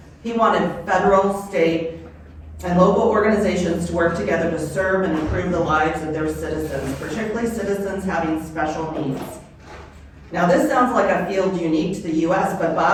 He wanted federal, state, and local organizations to work together to serve and improve the lives of their citizens, particularly citizens having special needs. Now, this sounds like a field unique to the U.S., but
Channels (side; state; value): both; identical; correlation 1.00